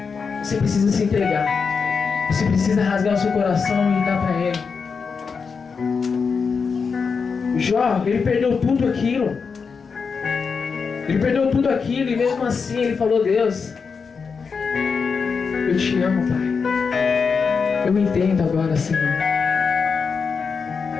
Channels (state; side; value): quieter; right; 5.4 dB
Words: Você precisa se entregar. Você precisa rasgar o seu coração e dar para Ele. Jó, ele perdeu tudo aquilo. Ele perdeu tudo aquilo e mesmo assim ele falou: Deus, eu te amo, Pai. Eu entendo agora, Senhor.